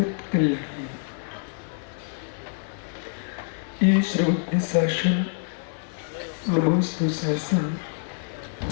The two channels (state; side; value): silent; right; 61 dB below the other